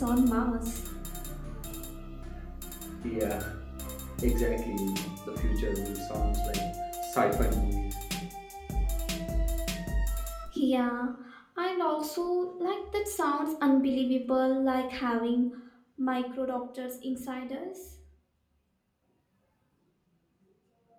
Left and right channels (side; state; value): both; identical; correlation 1.00